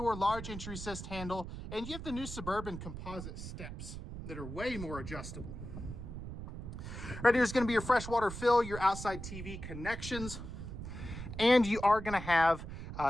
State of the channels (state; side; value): noise; right; rumble, 9 dB below the sound